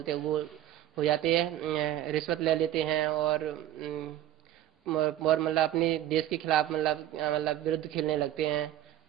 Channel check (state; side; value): quieter; left; 12.6 dB